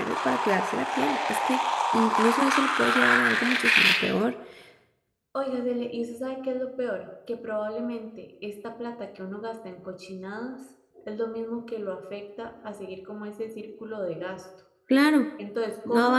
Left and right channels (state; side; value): identical; both; correlation 1.00